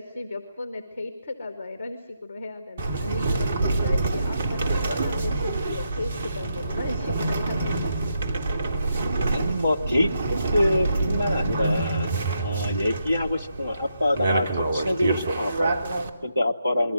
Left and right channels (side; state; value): both; inverted; correlation -0.80